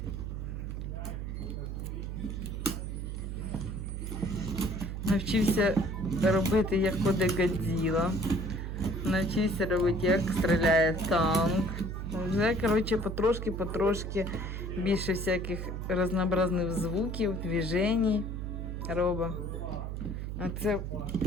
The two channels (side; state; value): right; noise; hum, 5 dB below the sound